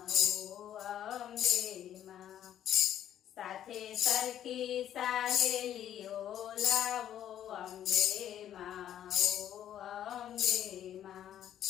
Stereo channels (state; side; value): quieter; right; 10.8 dB